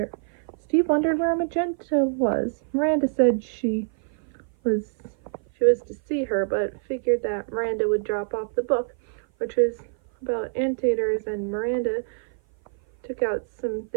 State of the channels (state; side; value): silent; left; 56 dB below the other